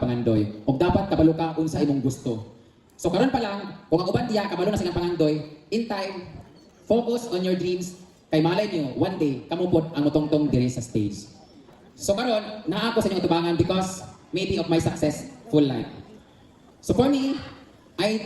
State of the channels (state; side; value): identical; both; correlation 1.00